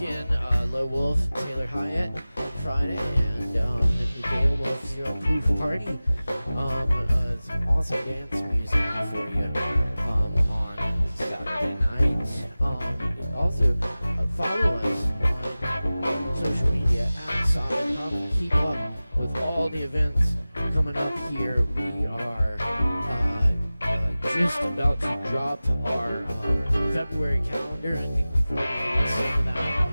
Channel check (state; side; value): inverted; both; correlation -0.97